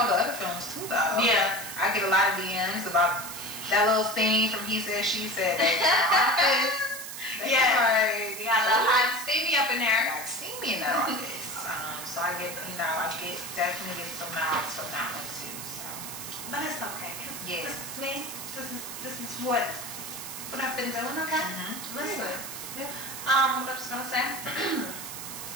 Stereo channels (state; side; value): noise; right; hiss, 9 dB below the sound